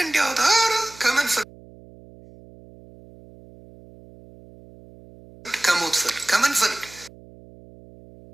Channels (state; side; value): noise; right; hum, 22 dB below the sound